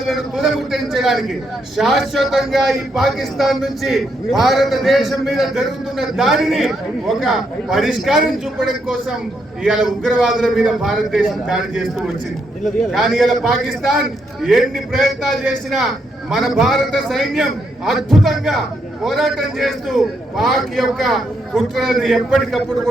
తుదముట్టించడానికి, శాశ్వతంగా ఈ పాకిస్తాన్ నుంచి భారతదేశం మీద జరుగుతున్న దాడిని ఒక పరిష్కారం చూపడం కోసం ఇవాళ ఉగ్రవాదుల మీద భారతదేశం దాడి చేస్తూ వచ్చింది. కానీ ఇలా పాకిస్తాన్ ఎన్ని ప్రయత్నాలు చేసినా మన భారత సైన్యం అద్భుతంగా పోరాటం చేస్తూ పాక్ యొక్క కుట్రలను ఎప్పటికప్పుడు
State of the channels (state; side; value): normal; both; correlation 0.78